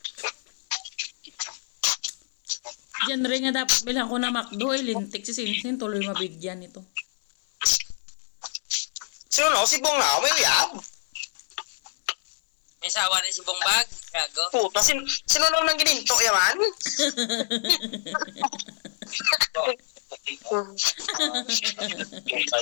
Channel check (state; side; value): silent; right; 61 dB below the other